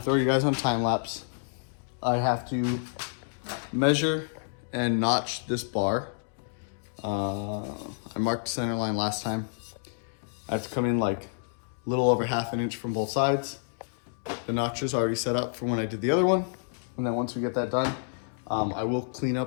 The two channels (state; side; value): silent; right; digital silence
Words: throw you guys on time lapse. I have to measure and notch this bar. I marked center line last time. I have to come in like a little over ½ an inch from both sides. The notch is already set up from when I did the other one. And then once we get that done, I will clean